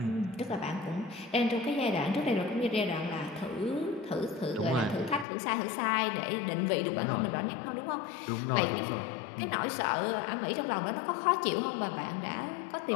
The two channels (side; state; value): right; drops out; at 5.2 s